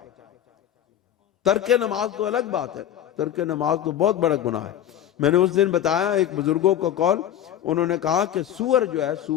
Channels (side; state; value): right; quieter; 10.7 dB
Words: ترک نماز تو الگ بات ہے، ترک نماز تو بہت بڑا گناہ ہے۔ میں نے اس دن بتایا ایک بزرگوں کو قول، انہوں نے کہا کہ سور جو ہے،